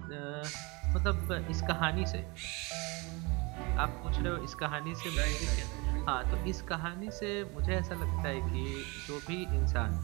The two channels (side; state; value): left; quieter; 27.3 dB